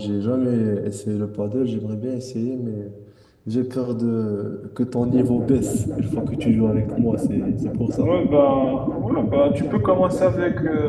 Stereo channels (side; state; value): both; identical; correlation 1.00